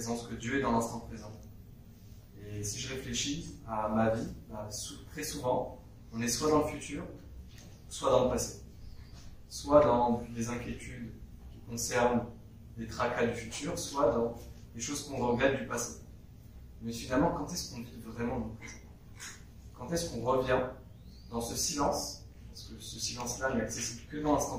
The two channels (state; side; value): identical; both; correlation 1.00